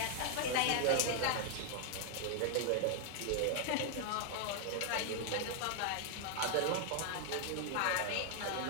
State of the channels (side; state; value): both; different; correlation 0.00